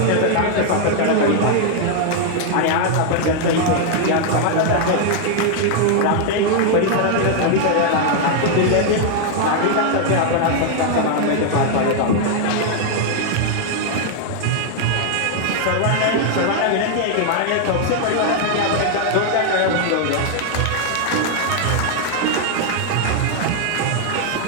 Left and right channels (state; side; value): different; both; correlation 0.00